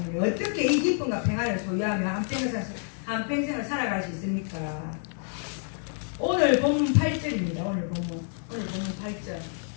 어떻게 이 기쁨과 평안을 소유하면 한평생을 살아갈 수 있습니까? 오늘 본문 8절입니다. 오늘 본문 8절.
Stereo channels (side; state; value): right; silent; 59 dB below the other